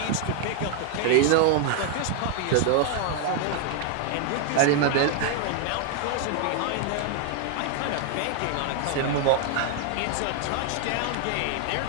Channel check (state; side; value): different; both; correlation 0.00